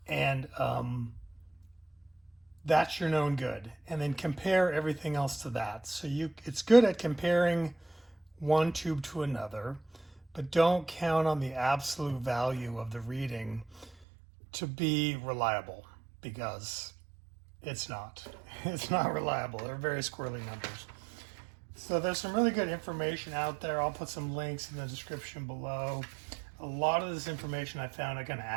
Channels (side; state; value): left; drops out; at 14.0 s